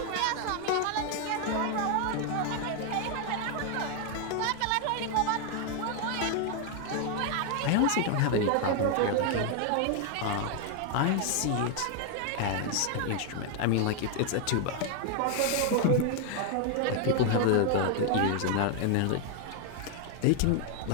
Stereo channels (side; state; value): both; different; correlation 0.01